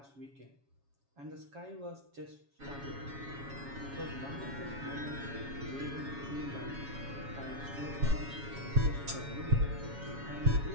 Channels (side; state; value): left; late; 7.2 ms